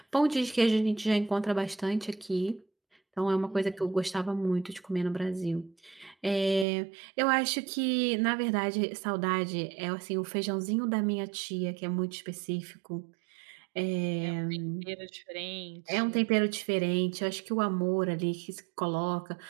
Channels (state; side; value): drops out; left; at 6.7 s